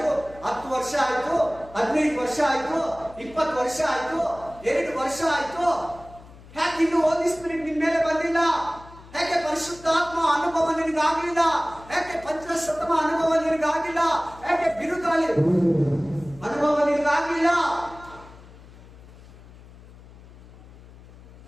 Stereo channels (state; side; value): noise; left; hum, 20 dB below the sound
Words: 10 ವರ್ಷ ಆಯ್ತು, 15 ವರ್ಷ ಆಯ್ತು, 20 ವರ್ಷ ಆಯ್ತು, 2 ವರ್ಷ ಆಯ್ತು. ಯಾಕೆ ಇನ್ನು ಹೋಲಿ ಸ್ಪಿರಿಟ್ ನಿನ್ ಮೇಲೆ ಬಂದಿಲ್ಲ? ಯಾಕೆ ಪರಿಶುದ್ಧಾತ್ಮ ಅನುಭವ ನಿನಗಾಗಲಿಲ್ಲ? ಯಾಕೆ ಪಂಚಶತಮ ಅನುಭವ ನಿನಗಾಗಿಲ್ಲ? ಯಾಕೆ ಬಿರುಗಾಳಿ ಅನುಭವ ನಿನಗಾಗಿಲ್ಲ?